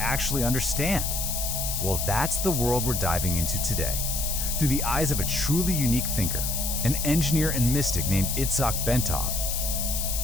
understand? Well, that's the world we're diving into today, through the eyes of a truly unique thinker, an engineer and mystic named Itzhak Bentov.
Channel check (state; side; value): noise; left; hiss, 2 dB below the sound